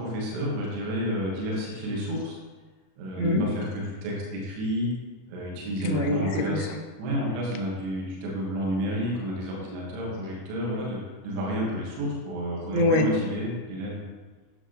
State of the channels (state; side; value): late; left; 32 ms